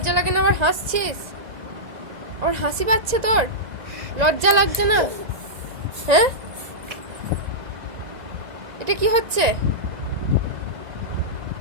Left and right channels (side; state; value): left; late; 1.9 ms